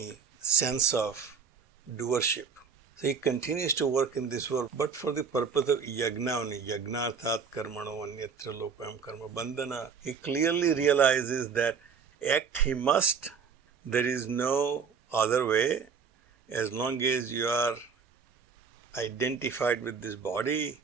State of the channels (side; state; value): left; quieter; 6.1 dB